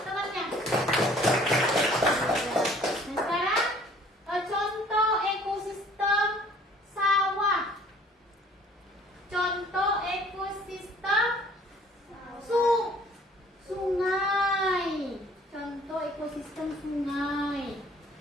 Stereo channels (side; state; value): both; normal; correlation 0.54